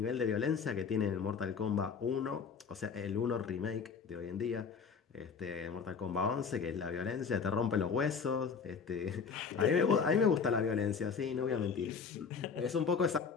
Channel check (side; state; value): right; quieter; 5.9 dB